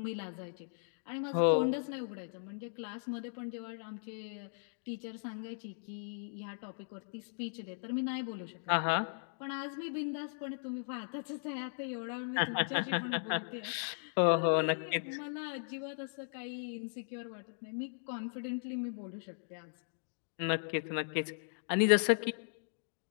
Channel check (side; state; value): right; silent; digital silence